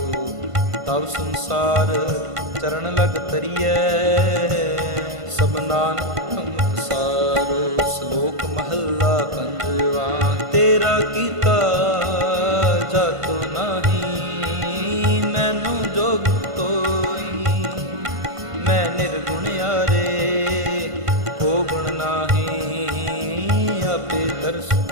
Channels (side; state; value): left; late; 1.5 ms